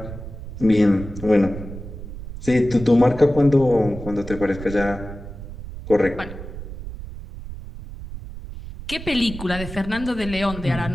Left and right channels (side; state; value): right; noise; rumble, 11 dB below the sound